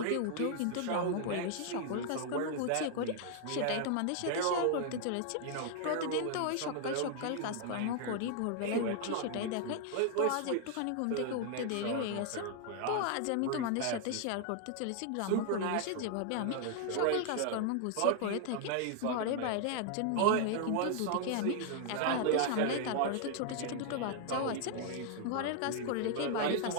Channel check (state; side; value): different; both; correlation 0.00